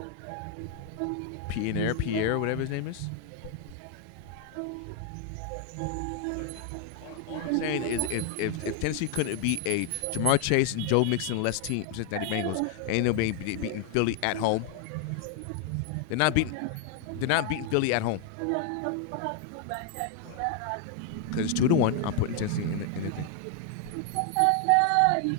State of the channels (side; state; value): both; different; correlation 0.00